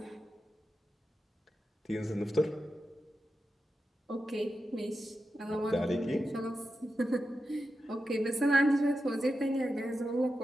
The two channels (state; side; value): normal; both; correlation 0.90